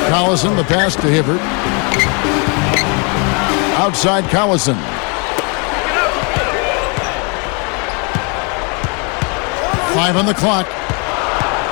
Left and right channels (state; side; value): quieter; right; 34.1 dB